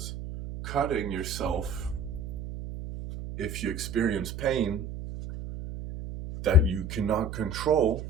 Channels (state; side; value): noise; right; hum, 8 dB below the sound